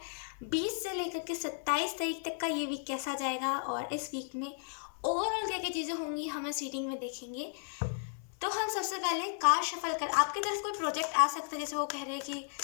20 से लेकर के 27 तारीख तक का ये वीक कैसा जाएगा और इस वीक में ओवरऑल क्या क्या चीज़ें होंगी हम इस रीडिंग में देखेंगे। तो हम सबसे पहले कार्ड शफल कर, आपकी तरफ कोई प्रोजेक्ट आ सकता है, जैसे वो कह रहे हैं कि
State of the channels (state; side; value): silent; right; 55 dB below the other